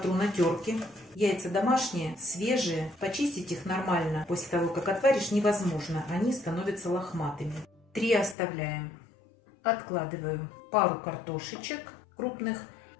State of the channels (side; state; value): right; drops out; at 8.3 s